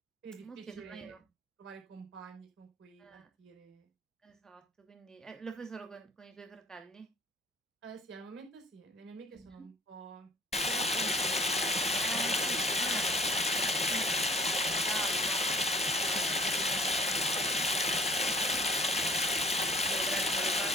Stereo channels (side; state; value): both; normal; correlation 0.53